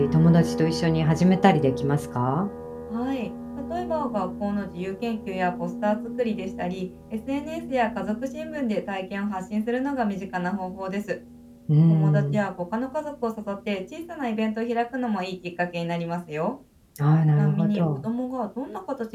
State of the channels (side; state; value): both; identical; correlation 1.00